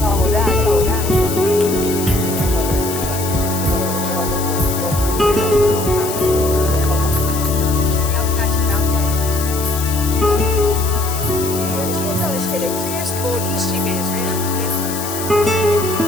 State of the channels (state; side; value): noise; left; hiss, 7 dB below the sound